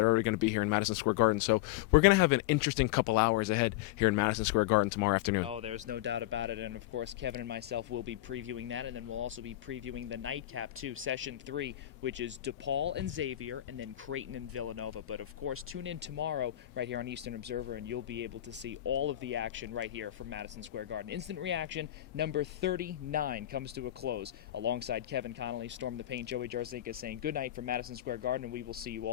are already going to be here in Madison Square Garden. So, we're going to have an interesting couple hours ahead here in Madison Square Garden tomorrow afternoon. Oh, there's no doubt about it. And, of course, Kevin and myself will be previewing that, and then we'll also be previewing the nightcap, too, Session 3, which is DePaul and Xavier, and then Creighton and Villanova. But, of course, tune in tomorrow right here on Eastern Observer, and you'll be able to see all of the action right here from Madison Square Garden. Instant Reaction number 39 comes to a close. Alongside Kevin Connelly, Storm the Paint, Joey Jarzynka saying good night from Madison Square Garden, and we will see you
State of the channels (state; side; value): quieter; right; 14.6 dB